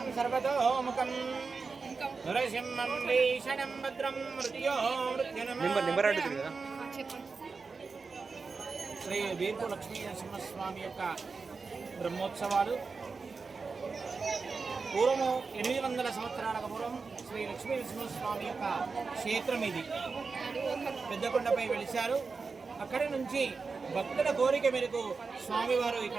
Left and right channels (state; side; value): quieter; left; 4.6 dB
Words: సర్వతోముఖం నరసింహం భీషణం భద్రం మృత్యో మృత్యునమ. శ్రీ బీర్పూర్ లక్ష్మీ నరసింహస్వామి యొక్క బ్రహ్మోత్సవాలు పూర్వము 800 సంవత్సరాలకు పూర్వం శ్రీ లక్ష్మీ నరసింహస్వామి యొక్క క్షేత్రం ఇది. పెద్దకొండపై వెలిశారు. అక్కడి నుంచి భక్తుల కోరిక మేరకు స్వామివారు